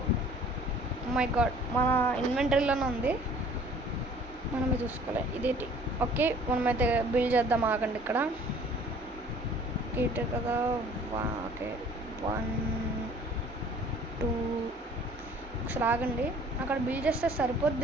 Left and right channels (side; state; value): both; normal; correlation 0.52